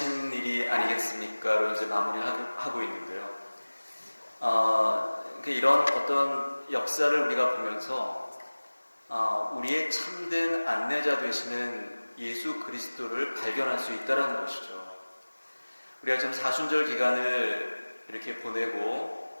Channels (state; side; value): inverted; both; correlation -1.00